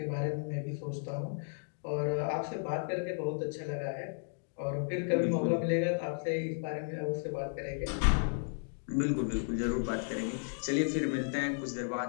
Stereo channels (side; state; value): right; silent; digital silence